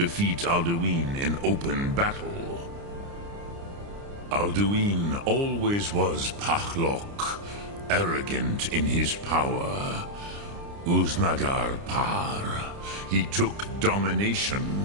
Alduin in open battle. Alduin always was Pachlok, arrogant in his power. Uznagar Par. He took domination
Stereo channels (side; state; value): left; late; 29 ms